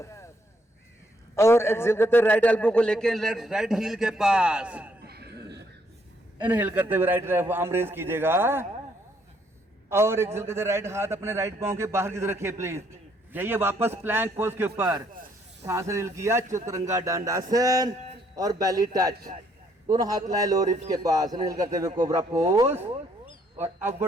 और एक्सेल करते राइट एल्बो को लेके लेफ्ट राइट हील के पास। इनहेल करते हुए राइट आर्म रेज कीजिएगा और एक्सेल करते राइट हाथ अपने राइट पांव के बाहर की तरफ रखिए प्लीज। जाइए वापस प्लैंक पोज के ऊपर, सांस इनहेल किया, चतुरंगा दंडासन और बेली टच, दोनों हाथ लाए लोअर रिब्स के पास। इनहेल करते हुए कोबरा पोज और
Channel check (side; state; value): both; normal; correlation 0.69